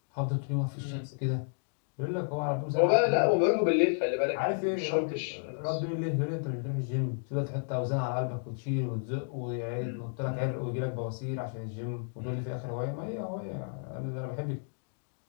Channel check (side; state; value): right; silent; digital silence